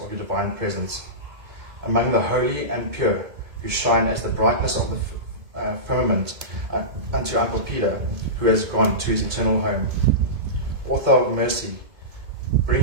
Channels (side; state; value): left; late; 2.1 ms